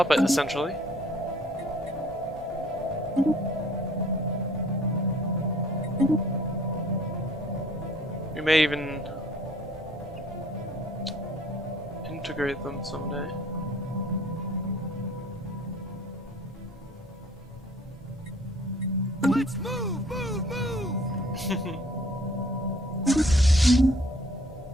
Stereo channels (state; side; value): normal; both; correlation 0.56